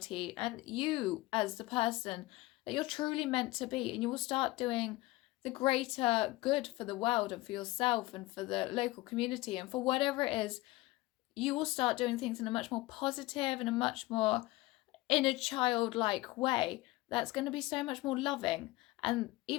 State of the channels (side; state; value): right; quieter; 19.7 dB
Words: and you as the person that you're truly meant to be. And you will start doing the greater good for the world and for yourself and for the local community and for whatever it is. You will start doing things in a much more positive and a much more inner childlike way that's going to be so much more loving. And